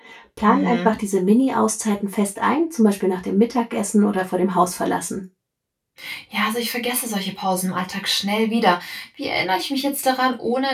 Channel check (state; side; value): identical; both; correlation 1.00